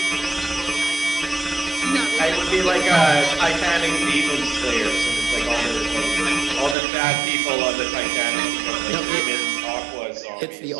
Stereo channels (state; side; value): drops out; left; at 6.8 s